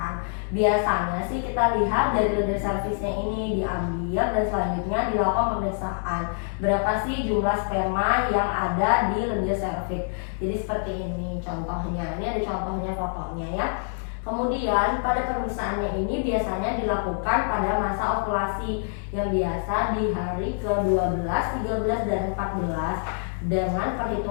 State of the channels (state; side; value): silent; right; 61 dB below the other